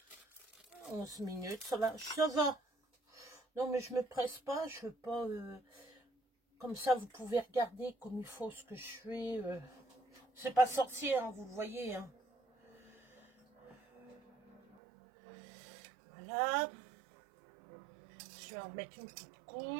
11 minutes, ça va, ça va. Non, mais je me presse pas, je veux pas... comme ça, vous pouvez regarder comme il faut ce que je fais. C'est pas sorcier, hein, vous le voyez. Hein. Voilà. Je vais en mettre une petite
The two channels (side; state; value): left; drops out; at 14.8 s